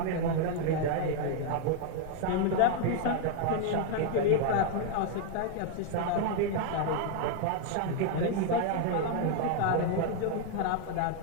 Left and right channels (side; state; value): both; different; correlation 0.00